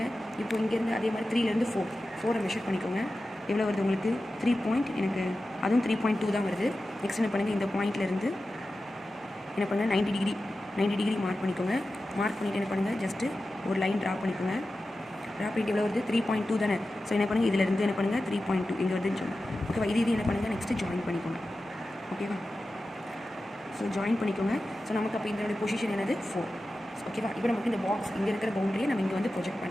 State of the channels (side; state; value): both; normal; correlation 0.93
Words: இப்போ இங்கேருந்து அதே மாதிரி 3லேருந்து 4 மெஷர் பண்ணிக்கோங்க. எவ்வளோ வருது உங்களுக்கு, 3 எனக்கு அதுவும் 3.2 தான் வருது. நெக்ஸ்ட் என்ன பண்ணுங்கள், இந்த பாயிண்ட்லேருந்து என்ன பண்ணுங்கள், 90 டிகிரி மார்க் பண்ணிக்கோங்க. மார்க் பண்ணிவிட்டு என்ன பண்ணுங்கள், ஜஸ்ட்டு ஒரு லைன் ட்ரா பண்ணிக்கோங்க. ட்ரா பண்ணிட்டு எவ்வளோ வருது, 3.2 தானே. ஸோ என்ன பண்ணுங்கள், இதிலேருந்து என்ன பண்ணுங்கள், 3.2 இங்கே வருதுன்னு சொல்லுங்கள். ஓகேவா. இது என்ன பண்ணுங்கள், நெக்ஸ்ட்டு ஜாயின் பண்ணிக்கோங்க. ஓகேவா. ஸோ ஜாயின் பண்ணிக்கோங்க. ஸோ நமக்கு அப்போ இதனுடைய பொசிஷன் என்னது, 4. ஓகேவா. இப்போ நமக்கு இந்த பாக்ஸ் இங்கே இருக்கிற பவுண்டரியை நம்ம இங்கே வந்து ப்ரொஜெக்ட்